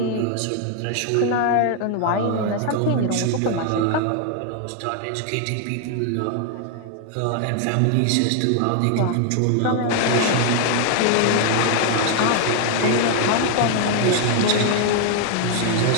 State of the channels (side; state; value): both; different; correlation 0.00